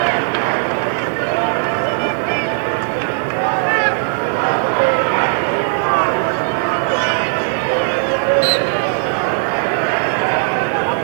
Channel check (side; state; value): left; silent; digital silence